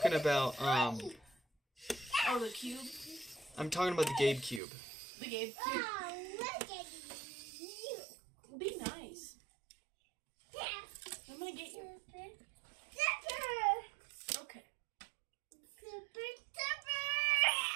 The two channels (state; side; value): drops out; left; at 4.6 s